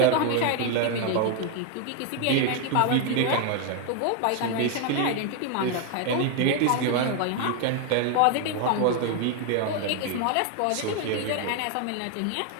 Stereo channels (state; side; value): different; both; correlation 0.01